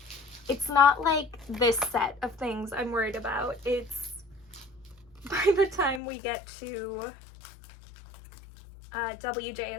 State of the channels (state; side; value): drops out; right; at 6.0 s